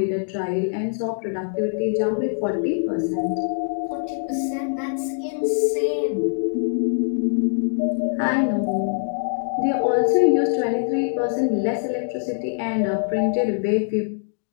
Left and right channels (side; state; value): right; silent; digital silence